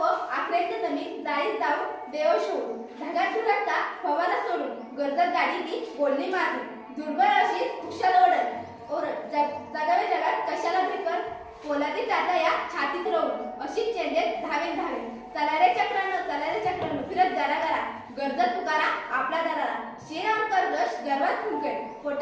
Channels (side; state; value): both; identical; correlation 1.00